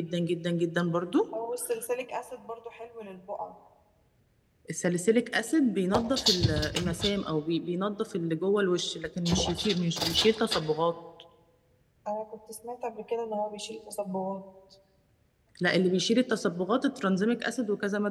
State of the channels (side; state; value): both; identical; correlation 1.00